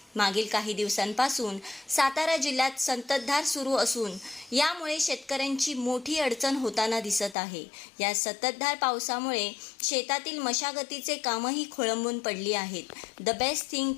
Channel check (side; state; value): right; drops out; at 7.4 s